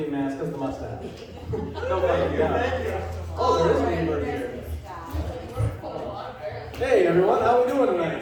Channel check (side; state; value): both; identical; correlation 1.00